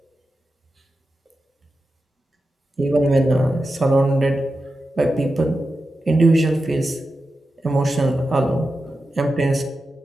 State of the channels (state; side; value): normal; both; correlation 0.91